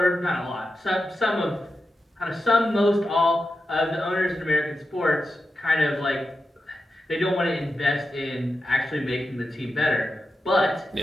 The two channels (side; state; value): both; normal; correlation 0.90